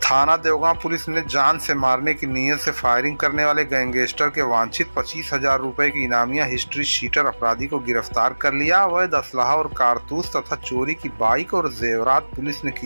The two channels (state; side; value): inverted; both; correlation -1.00